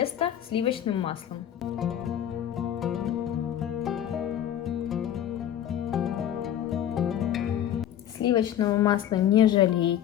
сливочным маслом. Сливочного масла не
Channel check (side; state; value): right; quieter; 10.7 dB